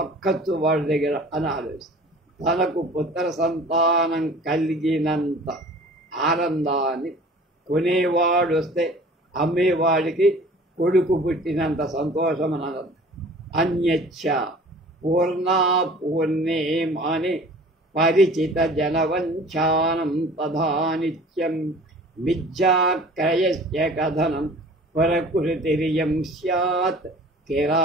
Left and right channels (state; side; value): normal; both; correlation 0.46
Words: వాడి దగ్గర అని ఆలోచిస్తాడు. తనకు పుత్ర సంతానం కలిగినంత ఆనందాన్ని కొనేవాడు వస్తే అమ్మేవాడికి కొడుకు పుట్టినంత సంతోషం అని అనంత. అన్యచ్చ పూర్ణా పూర్ణే మాని పరిచిత జనవంచానం తథా నిత్యం మిథ్యాక్రయస్య కథనం ప్రకృతిరియం స్యాత్